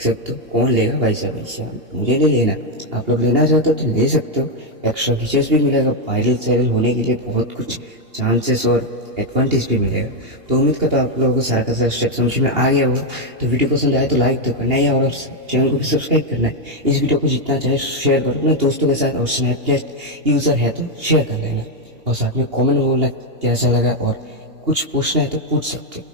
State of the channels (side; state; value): left; late; 2.8 ms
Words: सकते हो कौन लेगा भाई साहब, ऐसा मुझे नहीं लेना, आप लोग लेना चाहते हो तो ले सकते हो। एक्स्ट्रा फीचर्स भी मिलेगा, वायरल सायरल होने के लिए बहुत कुछ चांसेस और एडवांटेज भी मिलेगा। तो उम्मीद करता हूँ आप लोगों को सारा का सारा स्टेप समझ में आ गया होगा। तो वीडियो पसंद आए तो लाइक तो करना है और चैनल को भी सब्सक्राइब करना है। इस वीडियो को जितना चाहे शेयर करो अपने दोस्तों के साथ, और स्नैपचैट यूज़र है तो शेयर कर लेना, और साथ में कॉमेंट बोलना कैसा लगा, और कुछ पूछना है तो पूछ सकते